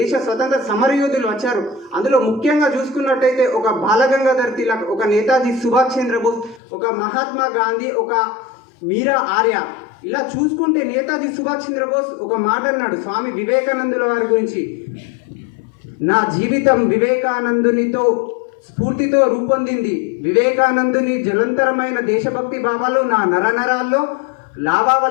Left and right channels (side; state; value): right; drops out; at 6.6 s